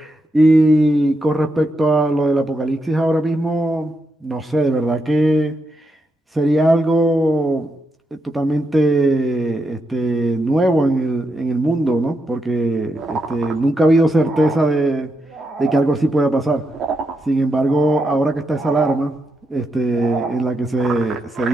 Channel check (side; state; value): both; normal; correlation 0.83